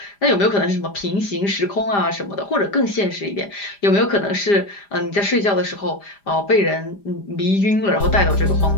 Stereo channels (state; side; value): late; right; 5.0 ms